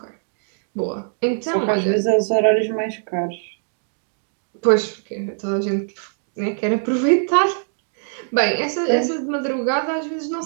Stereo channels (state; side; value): silent; left; digital silence